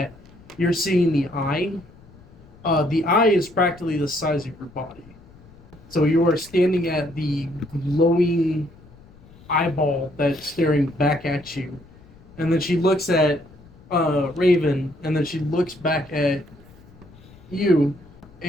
you're seeing the eye is practically the size of your body. So you are standing at the glowing eyeball that's staring back at you. And then she looks at Raven, and then she looks back at you,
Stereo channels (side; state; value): left; noise; rumble, 24 dB below the sound